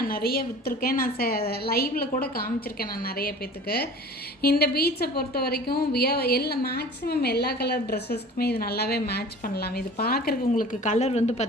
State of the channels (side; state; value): both; normal; correlation 0.42